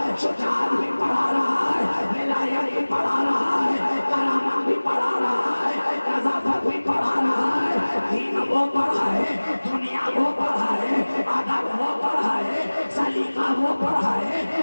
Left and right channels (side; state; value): both; inverted; correlation -1.00